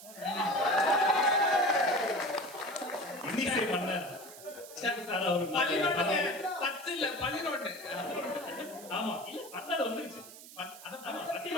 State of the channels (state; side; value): noise; right; hiss, 16 dB below the sound